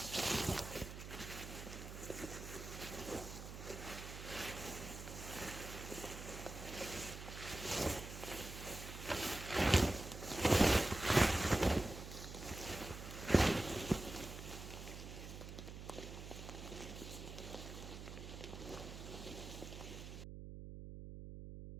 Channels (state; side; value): noise; right; hum, 10 dB below the sound